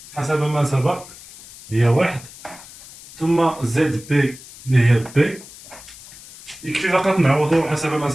حسب ما سبق هي 1 ثم ZB اللي هي B. يكفي فقط نعوضو حسب ما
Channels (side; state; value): left; noise; hiss, 19 dB below the sound